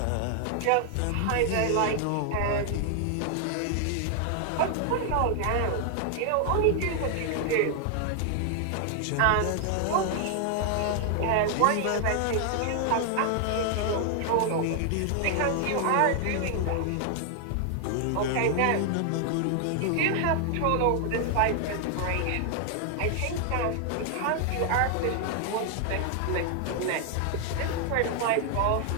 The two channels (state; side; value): different; both; correlation 0.00